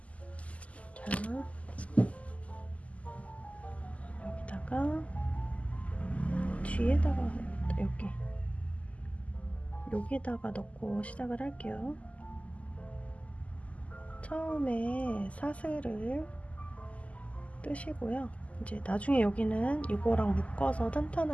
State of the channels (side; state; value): right; late; 0.068 ms